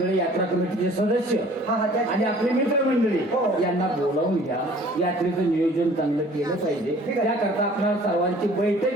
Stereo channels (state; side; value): normal; both; correlation 0.52